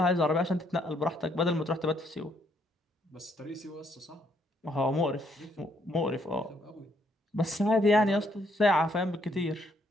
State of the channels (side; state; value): both; normal; correlation 0.71